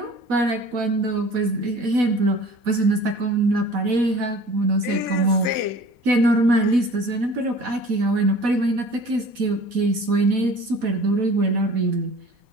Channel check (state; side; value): late; left; 4.1 ms